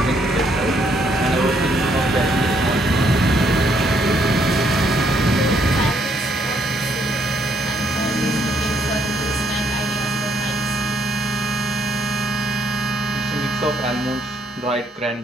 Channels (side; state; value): both; normal; correlation 0.70